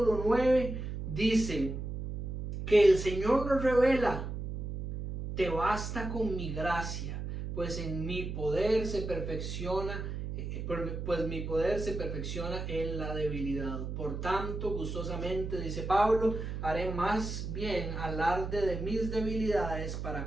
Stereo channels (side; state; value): right; noise; hum, 5 dB below the sound